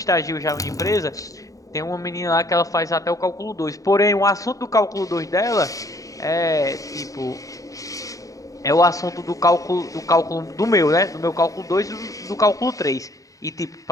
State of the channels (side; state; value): right; late; 0.16 ms